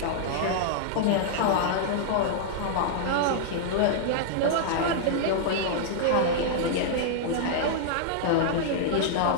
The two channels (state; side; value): different; both; correlation -0.01